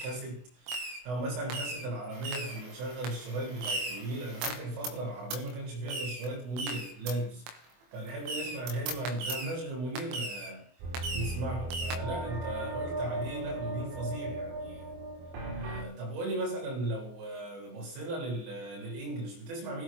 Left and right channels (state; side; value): late; left; 24 ms